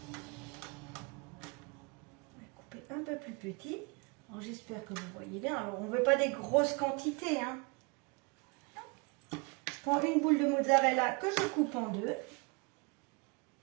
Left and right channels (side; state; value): left; quieter; 29.8 dB